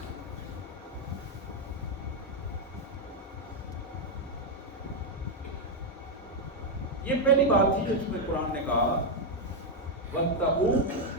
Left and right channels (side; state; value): both; normal; correlation 0.01